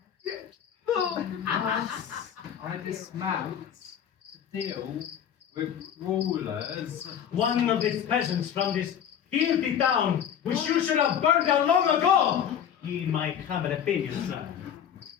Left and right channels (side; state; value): right; quieter; 9.0 dB